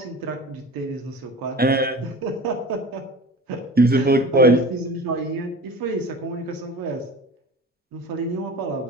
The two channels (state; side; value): normal; both; correlation 0.37